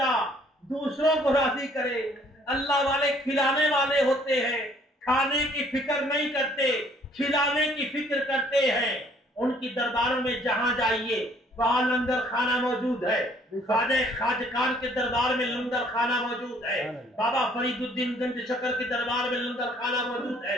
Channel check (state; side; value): normal; both; correlation 0.61